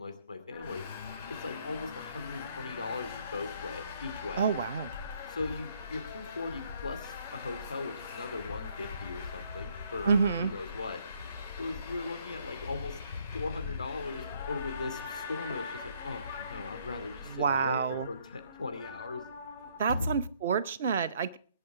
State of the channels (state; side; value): inverted; both; correlation -0.67